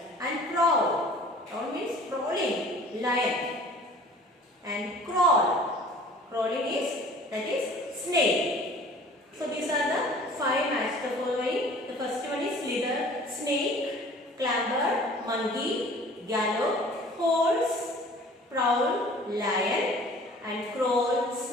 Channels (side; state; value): both; normal; correlation 0.48